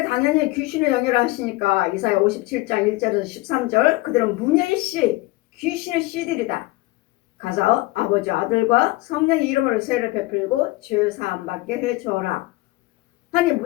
당연히 귀신을 영역하시니까 이사야 57장 1절에서 13절 그들은 문예의 씨 귀신의 씨들이다. 가서 아버지 아들과 성령의 이름으로 세를 베풀고 죄 사함 받게 해줘라. 아니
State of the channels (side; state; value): right; quieter; 20.4 dB